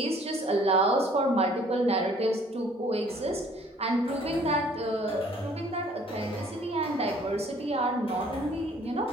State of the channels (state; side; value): normal; both; correlation 0.57